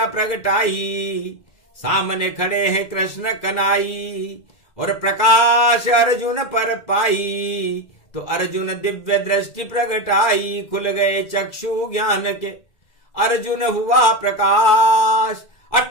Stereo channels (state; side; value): late; right; 2.4 ms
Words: प्रगटाई, सामने खड़े हैं कृष्ण कनाई, और प्रकाश अर्जुन पर पाई, तो अर्जुन दिव्य दृष्टि प्रगटाई, खुल गए चक्षु ज्ञान के, अर्जुन हुआ प्रकाश,